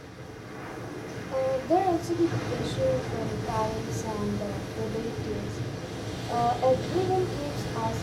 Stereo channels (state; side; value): identical; both; correlation 1.00